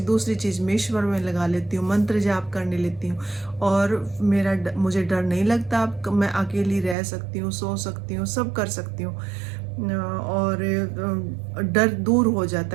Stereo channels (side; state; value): left; drops out; at 7.0 s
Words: चीज़ में, ईश्वर में लगा लेती हूँ, मंत्र जाप करने लेती हूँ। और मुझे डर नहीं लगता। अब मैं अकेली रह सकती हूँ, सो सकती हूँ, सब कर सकती हूँ। और डर दूर हो